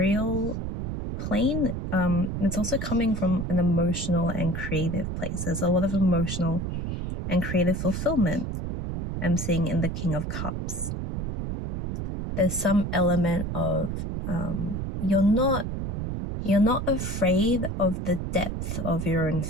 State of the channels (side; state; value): right; noise; rumble, 4 dB below the sound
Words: plane, it's also coming from an emotional and creative place. There's a lot of emotional and creative fulfillment I'm seeing in the King of Cups. There's some element of you're not afraid of the depth of your own